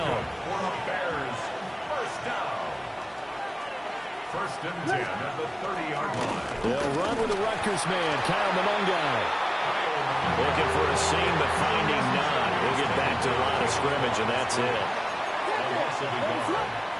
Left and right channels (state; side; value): identical; both; correlation 1.00